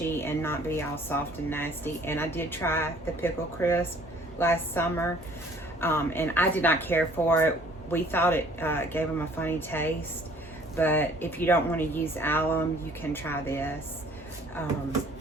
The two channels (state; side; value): normal; both; correlation 0.55